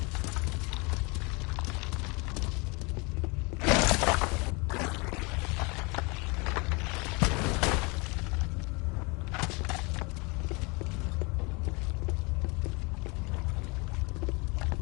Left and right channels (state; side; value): quieter; right; 28.8 dB